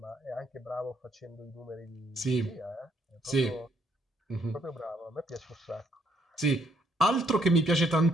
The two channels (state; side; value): normal; both; correlation 0.70